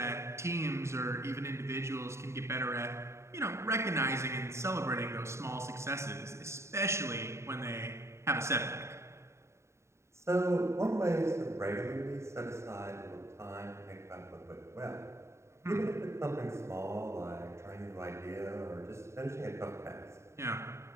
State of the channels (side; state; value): left; late; 0.13 ms